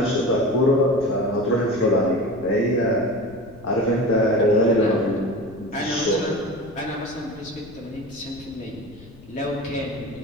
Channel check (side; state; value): left; noise; rumble, 21 dB below the sound